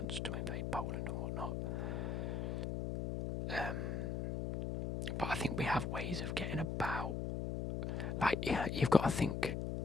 to invade Poland and whatnot. But I think we have ways of getting about. Like, you've got to think.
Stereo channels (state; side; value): noise; left; hum, 2 dB below the sound